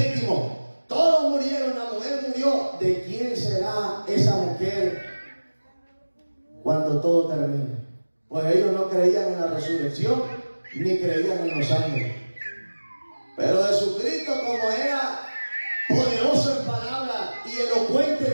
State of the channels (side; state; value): both; inverted; correlation -1.00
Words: Todos murieron, la mujer murió. ¿De quién será esa mujer cuando todo termine? Pues ellos no creían en la resurrección ni creían en los ángeles. Pero Jesucristo, como era poderoso en palabras y